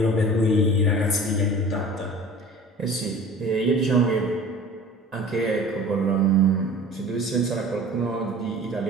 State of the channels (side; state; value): both; normal; correlation 0.42